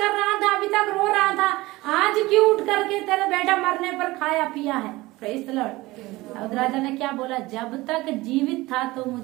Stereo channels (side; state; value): left; quieter; 19.9 dB